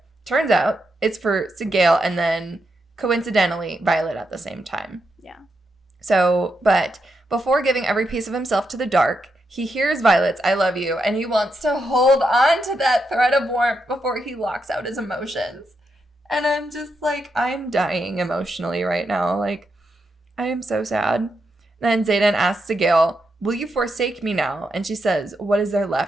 Turns out it's for Sigale and then coincidentally Violet at the same time. Yeah. So, but before giving every piece of himself to the dark, he hears Violet's "I love you," and he wants to hold on to that thread of warmth before he locks out his emotions. And I'm just like, I'm dying emotionally right now. Like, I am so sad. Then Xaden asks Sigale, "Will you forsake me now?" And she says, "What is there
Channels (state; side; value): normal; both; correlation 0.83